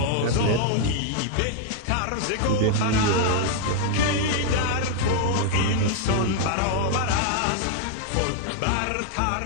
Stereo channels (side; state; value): both; different; correlation 0.00